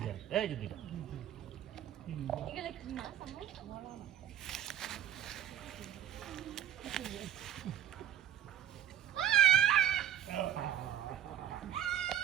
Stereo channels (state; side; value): quieter; left; 10.6 dB